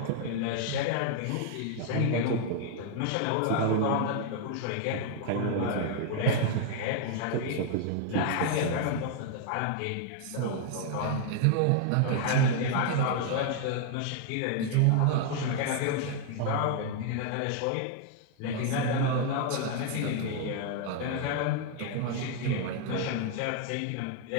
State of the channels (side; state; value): both; different; correlation 0.00